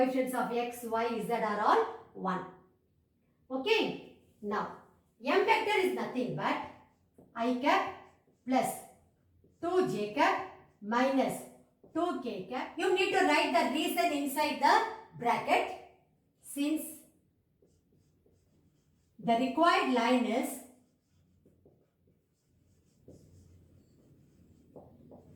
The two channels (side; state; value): both; identical; correlation 1.00